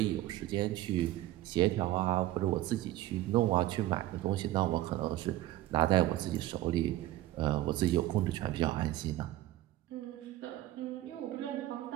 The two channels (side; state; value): left; quieter; 15.1 dB